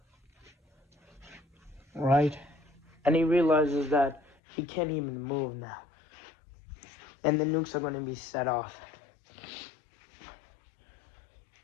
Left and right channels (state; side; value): drops out; right; at 4.4 s